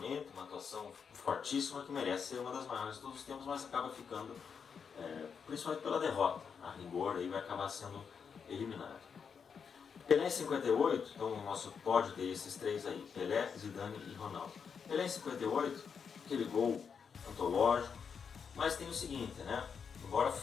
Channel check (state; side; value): quieter; right; 6.4 dB